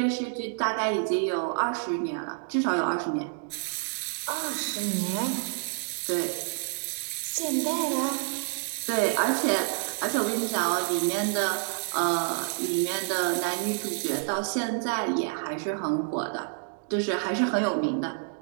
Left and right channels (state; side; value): silent; left; 59 dB below the other